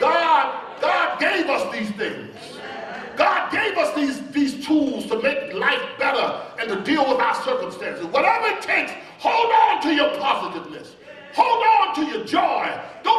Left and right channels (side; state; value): both; identical; correlation 1.00